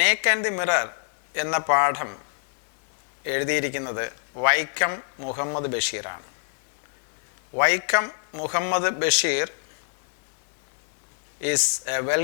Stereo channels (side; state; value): right; silent; 61 dB below the other